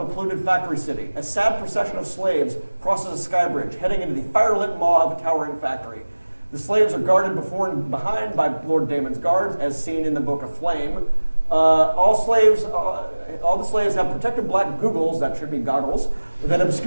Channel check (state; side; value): inverted; both; correlation -1.00